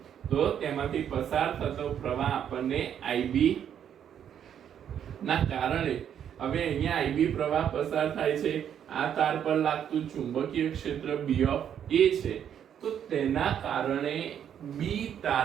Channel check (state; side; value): quieter; left; 9.1 dB